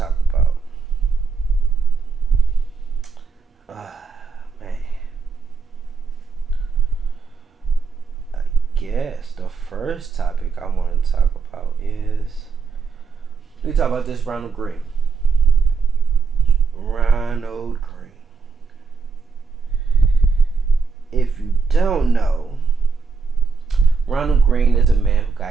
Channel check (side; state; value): left; quieter; 5.0 dB